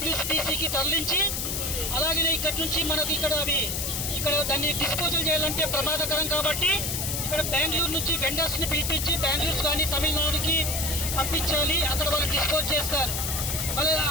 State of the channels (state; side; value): noise; left; hiss, 2 dB below the sound